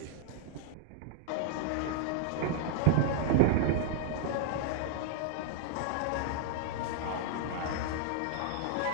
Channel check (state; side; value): different; both; correlation 0.00